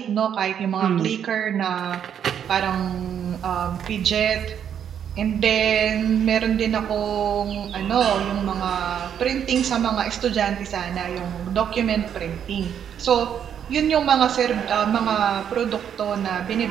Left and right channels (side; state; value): left; quieter; 8.7 dB